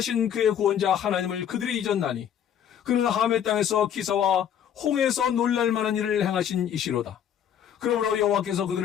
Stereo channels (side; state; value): right; quieter; 9.3 dB